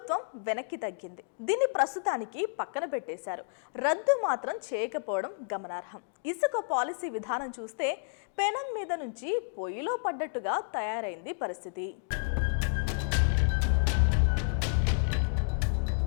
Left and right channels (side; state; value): right; silent; digital silence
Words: వెనక్కి తగ్గింది. దీన్ని ప్రస్తుతానికి పక్కన పెట్టేశారు. రద్దు మాత్రం చేయకపోవడం గమనార్హం. ఇసుక పాలసీ విధానం చూస్తే పెనం మీద నుంచి పొయ్యిలో పడ్డట్టుగా తయారైంది పరిస్థితి.